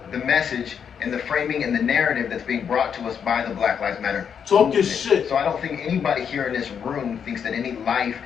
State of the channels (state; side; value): quieter; right; 7.5 dB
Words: the message and the framing and the narrative that's being brought to us by the Black Lives Matter Talk your movement. shit. So I don't think anybody here in this room thinks that any life